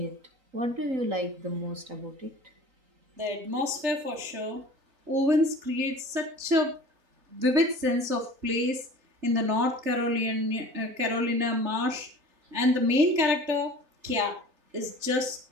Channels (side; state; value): left; late; 3.4 ms